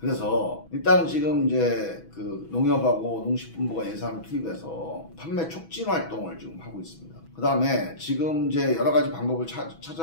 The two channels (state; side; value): late; right; 6.1 ms